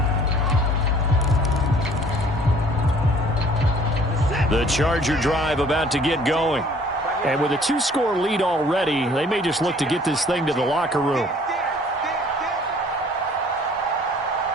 The Charger drive about to get going. And with a 2-score lead already, they may just look to get this thing to the locker room.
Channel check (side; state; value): both; normal; correlation 0.55